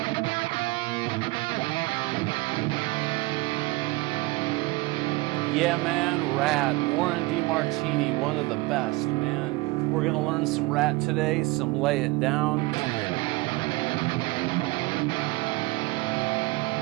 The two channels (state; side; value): quieter; left; 22.5 dB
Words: Yeah, man, Ratt, Warren Demartini, one of the best, man. We're gonna learn some Ratt today, some Lay It Down.